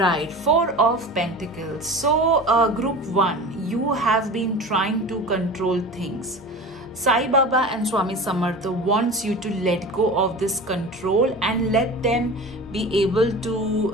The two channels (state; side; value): normal; both; correlation 0.34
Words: Four of Pentacles. So group 1, you have been trying to control things. Sai Baba and Swami Samartha wants you to let go of this control and let them be able